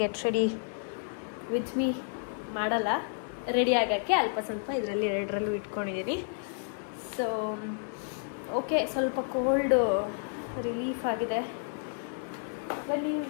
ರೆಡಿ ವಿತ್ ಮೀ ಮಾಡಲ್ಲ, ರೆಡಿ ಆಗೋಕ್ಕೆ ಅಲ್ಪ ಸ್ವಲ್ಪ ಇದರಲ್ಲಿ 2ರಲ್ಲೂ ಇಟ್ಕೊಂಡಿದ್ದೀನಿ. ಸೊ ಓಕೆ, ಸ್ವಲ್ಪ ಕೋಲ್ಡು ರಿಲೀಫ್ ಆಗಿದೆ. ಬನ್ನಿ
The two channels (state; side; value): silent; right; digital silence